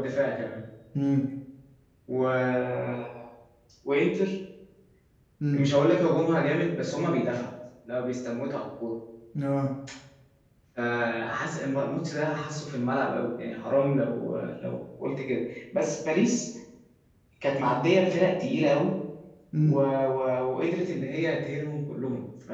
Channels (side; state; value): both; identical; correlation 1.00